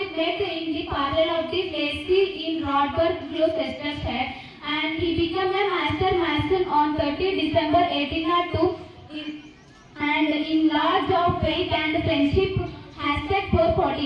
met in the parallel of the Placey in Rodberg, Gloucestershire, and he became a master mason on 30 December 1802 and in large of faith and friendship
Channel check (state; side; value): identical; both; correlation 1.00